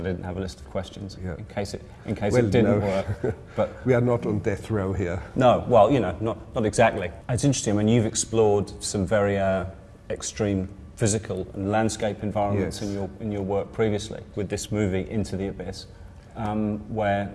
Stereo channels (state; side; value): identical; both; correlation 1.00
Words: I didn't have a list of questions, in case it didn't work. But we are not on death row here. No, well, not exactly. It's interesting. I mean, you've explored some very extreme physical and landscape environments in your work previously with this movie Into the Abyss, where